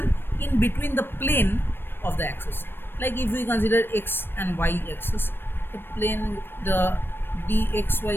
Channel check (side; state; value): right; late; 0.10 ms